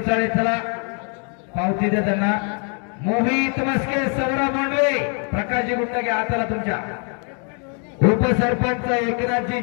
चला पावती दे त्यांना. मोहित मस्के, सौरभ भोंडवे, प्रकाशजी गुंड घ्या हाताला तुमच्या. उपसरपंच एकनाथजी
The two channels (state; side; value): quieter; right; 39.0 dB